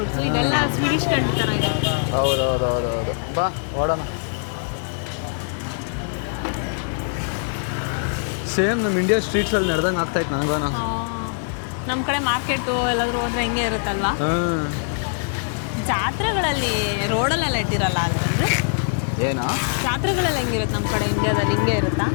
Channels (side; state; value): right; silent; digital silence